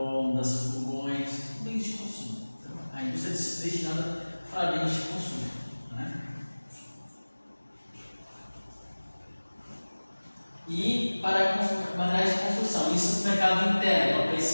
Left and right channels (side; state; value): both; inverted; correlation -1.00